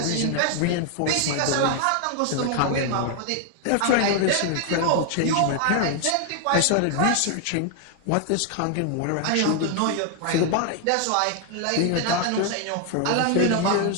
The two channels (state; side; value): different; both; correlation 0.00